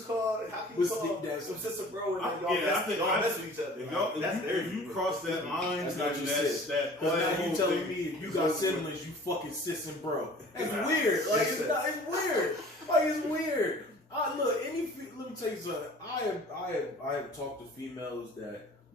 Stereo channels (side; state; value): both; normal; correlation 0.47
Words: call some sister bro and like, y'all mess with each other? If you cross that line, that's not your sis. Because now you telling me if you got siblings, you fucking sis and bro. That's weird. Like it's weird. Like it's weird. Look, let me tell you something. I have talked to females that,